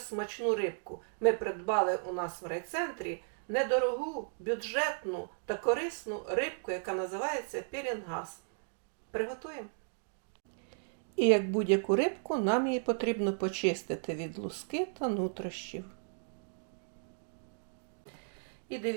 рибку. Ми придбали у нас в райцентрі недорогу, бюджетну та корисну рибку, яка називається пелінгаз. Приготуємо. І як будь-яку рибку, нам її потрібно почистити від луски та нутрощів. І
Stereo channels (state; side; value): silent; left; digital silence